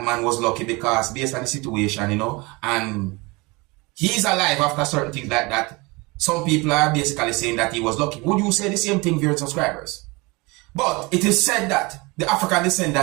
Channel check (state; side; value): quieter; left; 25.4 dB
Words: man was lucky because based on the situation, and he's alive after certain things like that. Some people are basically saying that he was lucky. Would you say the same thing, viewers and subscribers? But it is said that the African